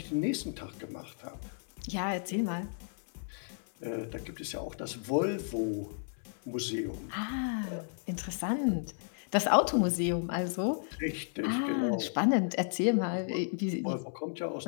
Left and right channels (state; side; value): silent; right; 56 dB below the other